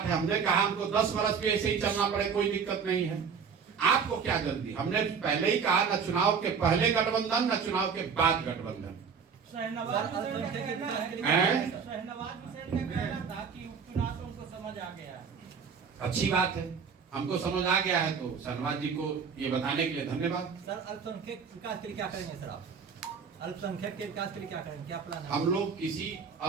है? हमने कहा हमको 10 वर्ष भी ऐसे ही चलना पड़े, कोई दिक्कत नहीं है। आपको क्या जल्दी? हमने पहले ही कहा न चुनाव के पहले गठबंधन न चुनाव के बाद गठबंधन। शहनवाज हुसैन का कहना था कि उपचुनाव से उनको समझ आ गया। अच्छी बात है, हमको समझ आ गया है तो शहनवाज जी को ये बताने के लिए धन्यवाद। सर अल्पसंख्यक विकास के लिए क्या करेंगे सर आप? अल्पसंख्यक के विकास के लिए क्या करेंगे, क्या प्लान है? हम लोग किसी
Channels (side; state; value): left; quieter; 6.2 dB